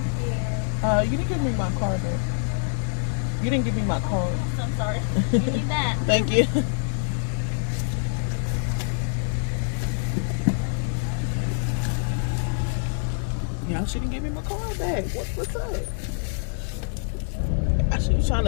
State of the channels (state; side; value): silent; right; 61 dB below the other